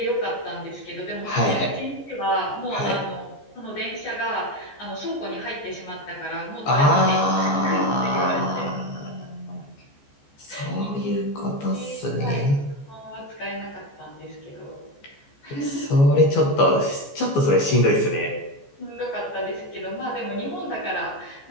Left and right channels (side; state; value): right; late; 14 ms